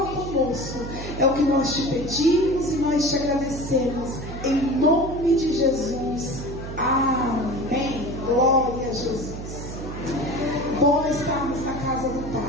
conosco. É o que nós te pedimos e nós te agradecemos. Em nome de Jesus. Amém. Glória a Jesus. Bom estarmos na casa do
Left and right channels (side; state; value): right; noise; hum, 9 dB below the sound